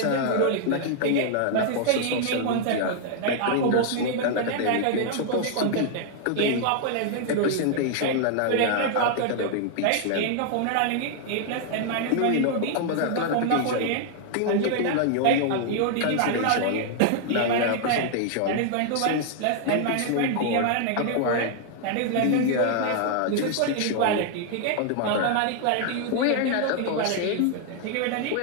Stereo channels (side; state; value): both; different; correlation 0.00